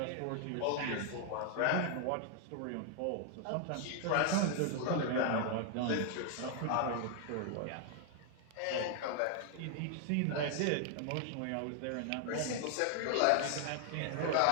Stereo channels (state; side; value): different; both; correlation 0.00